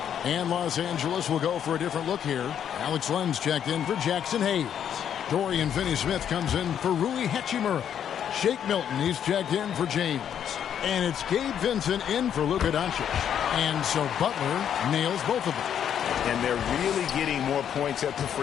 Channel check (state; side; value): quieter; right; 9.1 dB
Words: And Los Angeles will go for a different look here. Alex Len's checked in for Jackson Hayes. Dorian Finney-Smith comes in for Rui Hachimura. Shake Milton, he's checked in for James. And it's Gabe Vincent in for Luka Doncic. And so Butler nails both of them. And they're really getting more points at the